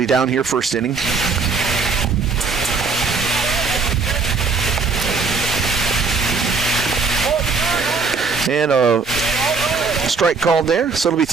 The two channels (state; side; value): quieter; left; 4.7 dB